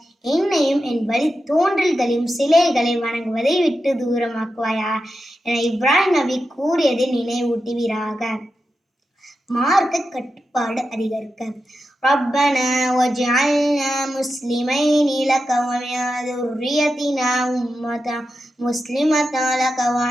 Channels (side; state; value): both; normal; correlation 0.90